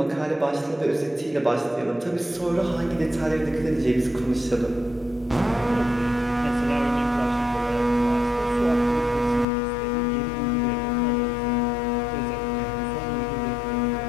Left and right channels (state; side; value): drops out; right; at 9.5 s